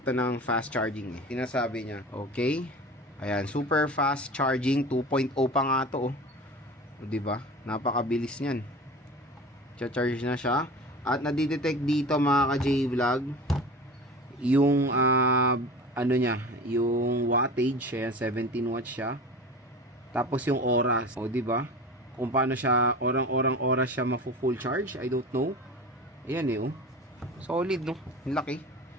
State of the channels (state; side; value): normal; both; correlation 0.35